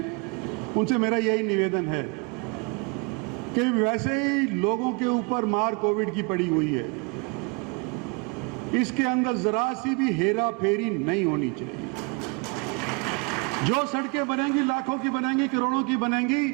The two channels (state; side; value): quieter; left; 31.5 dB